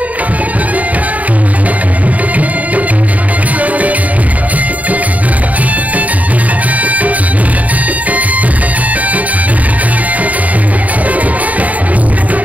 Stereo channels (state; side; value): late; left; 0.072 ms